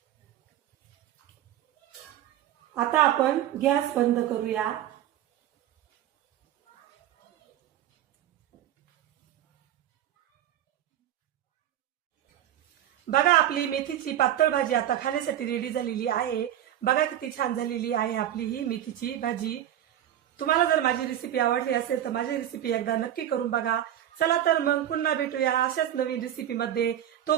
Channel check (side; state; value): left; quieter; 11.7 dB